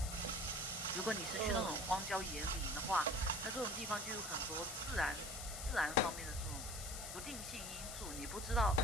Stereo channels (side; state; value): left; noise; hiss, 7 dB below the sound